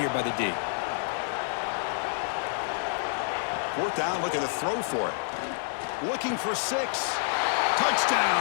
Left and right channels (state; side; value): silent; right; digital silence